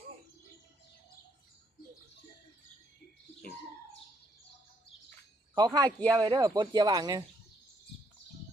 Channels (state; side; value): normal; both; correlation 0.72